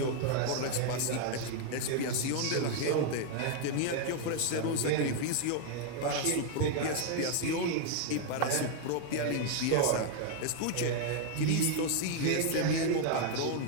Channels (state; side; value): different; both; correlation 0.00